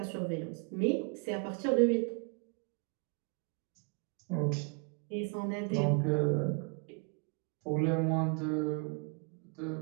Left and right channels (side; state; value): left; quieter; 36.7 dB